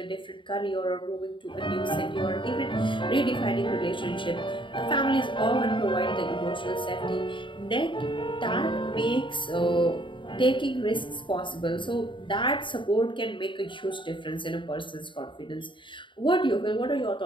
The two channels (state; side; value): late; right; 0.24 ms